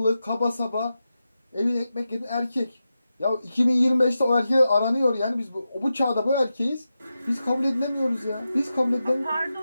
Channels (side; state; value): both; inverted; correlation -0.91